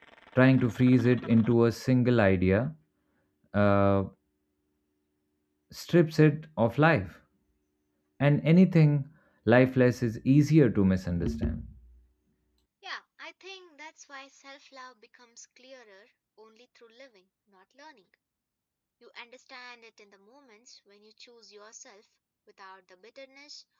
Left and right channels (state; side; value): identical; both; correlation 1.00